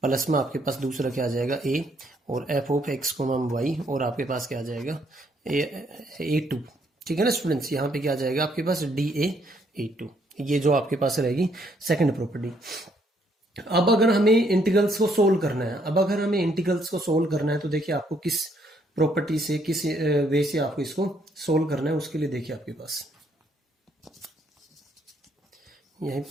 plus में आपके पास दूसरा क्या आ जाएगा ए और F of X comma Y, और आपके पास क्या आ जाएगा ए टू। ठीक है ना स्टूडेंट्स, यहाँ पे क्या आ जाएगा आपके पास डी ए टू, ये जो आपके पास रहेगी सेकंड प्रॉपर्टी। अब अगर हमें इंटीग्रल्स को सोल्व करना है, अब अगर हमें इंटीग्रल्स को सोल्व करना है तो देखिए आपको किस प्रॉपर्टी से किस वे से आपको इसको सोल्व करना है, उसके लिए देखिए आपके पास यही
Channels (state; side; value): normal; both; correlation 0.70